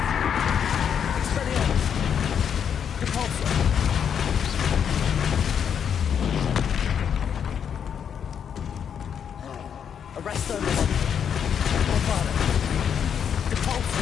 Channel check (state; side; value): quieter; right; 8.0 dB